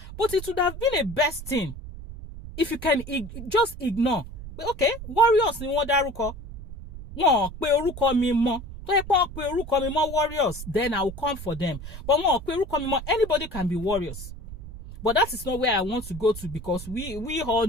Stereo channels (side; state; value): right; noise; rumble, 12 dB below the sound